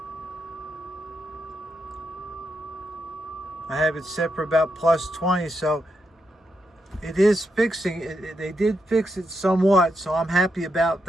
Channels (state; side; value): normal; both; correlation 0.83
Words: I have it set for about plus 20. So it is fixing it. They did fix it somewhat, so I'm happy about